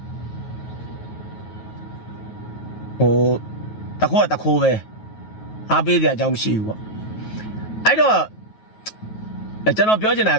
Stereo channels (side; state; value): right; late; 9.3 ms